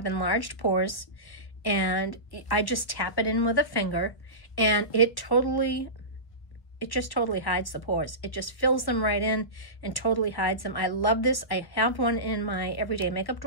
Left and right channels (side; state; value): right; late; 1.1 ms